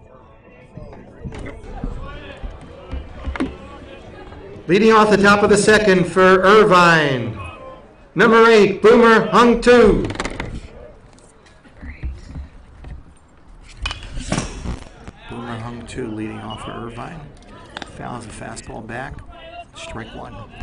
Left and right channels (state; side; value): identical; both; correlation 1.00